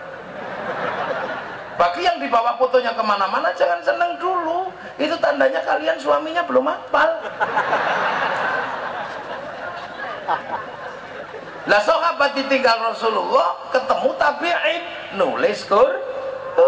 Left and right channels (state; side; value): identical; both; correlation 1.00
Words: Bagi yang dibawa fotonya kemana-mana jangan seneng dulu, itu tandanya kalian suaminya belum hafal. Lah sahabat ditinggal Rasulullah, ketemu tabi'in, nulis